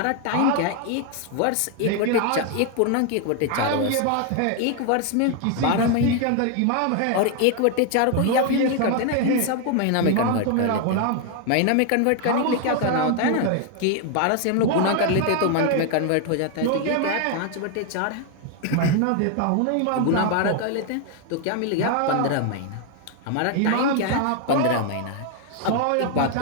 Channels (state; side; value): different; both; correlation 0.01